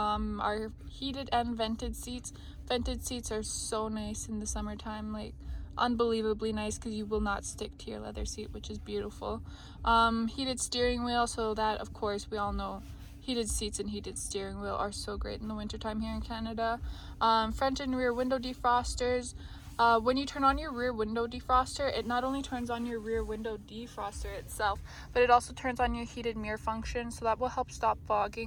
heated and vented seats. Vented seats are so nice in the summertime, like unbelievably nice, because you will not stick to your leather seat, which is beautiful. Heated steering wheel, so that of course we all know heated seats and heated steering wheel are so great in the wintertime here in Canada. Front and rear window defrosters. When you turn on your rear window defroster, it not only turns on your rear window defroster itself, but it also turns on your heated mirror function, so that will help stop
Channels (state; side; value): identical; both; correlation 1.00